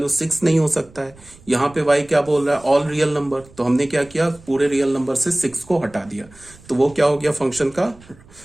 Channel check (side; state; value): right; noise; rumble, 25 dB below the sound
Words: 6 नहीं हो सकता है। यहाँ पे y क्या बोल रहा है, ऑल रियल नंबर। तो हमने क्या किया, पूरे रियल नंबर से 6 को हटा दिया, तो वो क्या हो गया, फंक्शन का